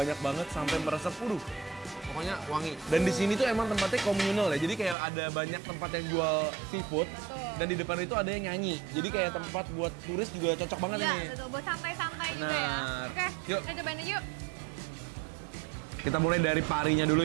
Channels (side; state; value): left; drops out; at 5.0 s